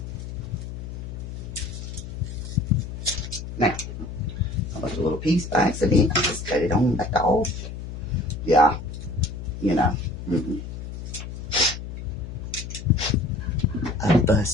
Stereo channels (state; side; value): noise; left; hum, 8 dB below the sound